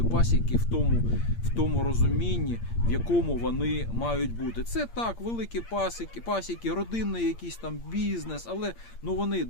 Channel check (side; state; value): right; late; 8.6 ms